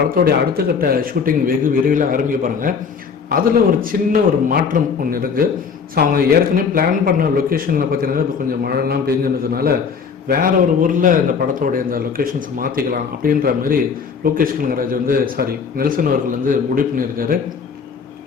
அடுத்த கட்ட ஷூட்டிங் வெகு விரைவில் ஆரம்பிக்க போகிறாங்க. அதில் ஒரு சின்ன ஒரு மாற்றம் ஒன்று இருக்குது. ஸோ அவங்க ஏற்கனவே பிளான் பண்ண லொக்கேஷனில் பார்த்தீங்கன்னா இப்போ கொஞ்சம் மழைலாம் பெஞ்சுனதுனால வேற ஒரு ஊரில் இந்த படத்தோடைய இந்த லொக்கேஷன்ஸை மாற்றிக்கலாம் அப்படின்ற மாதிரி லோகேஷ் கனகராஜ் நெல்சன் அவர்கள் முடிவு பண்ணியிருக்காரு.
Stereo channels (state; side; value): quieter; right; 6.0 dB